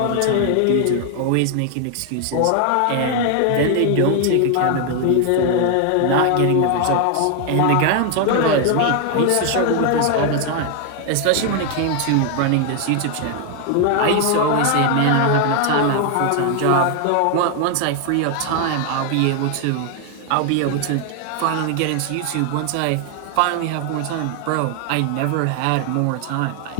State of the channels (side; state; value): both; different; correlation 0.00